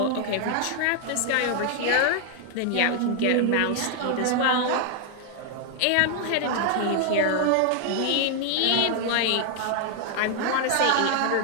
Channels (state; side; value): different; both; correlation 0.00